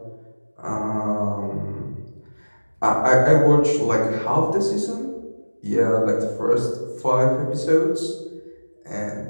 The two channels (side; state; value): both; inverted; correlation -1.00